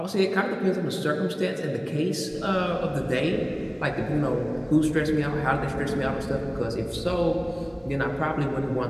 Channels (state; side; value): identical; both; correlation 1.00